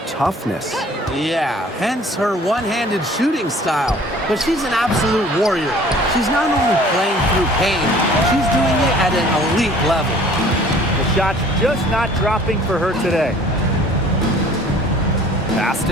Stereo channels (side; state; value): both; normal; correlation 0.51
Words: toughness. Yeah, hence her one-handed shooting style. But she's an absolute warrior. She's not only playing through pain, she's doing it at an elite level. The shot's just not dropping for her today. Pass